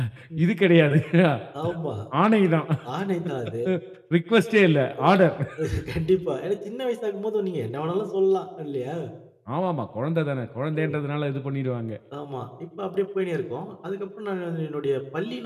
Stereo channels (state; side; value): identical; both; correlation 1.00